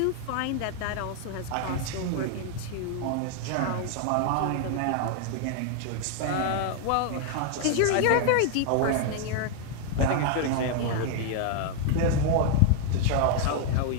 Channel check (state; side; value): different; both; correlation 0.00